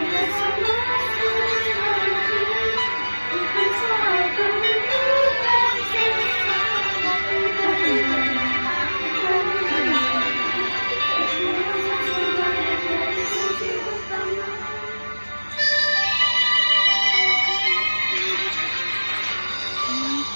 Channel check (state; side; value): inverted; both; correlation -1.00